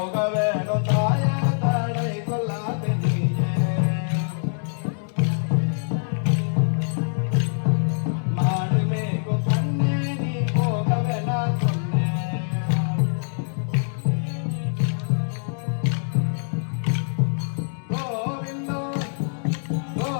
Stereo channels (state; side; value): silent; right; 62 dB below the other